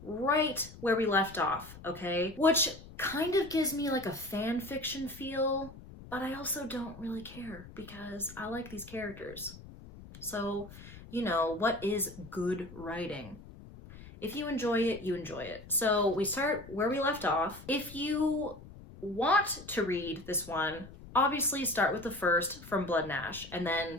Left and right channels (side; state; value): left; noise; rumble, 17 dB below the sound